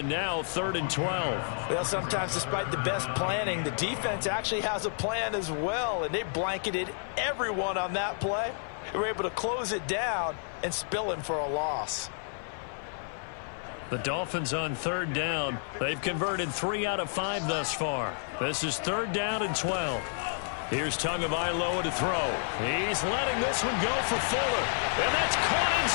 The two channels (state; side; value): silent; right; digital silence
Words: now 3rd and 12. Well, sometimes despite the best planning, the defense actually has a plan as well, and they blanketed everyone on that play. They were able to close it down and spill him for a loss. The Dolphins on 3rd down. They've converted 3 out of 5 thus far. This is 3rd down and 12. Here's Tagovailoa to throw. He's letting this one go for Fuller. And that's caught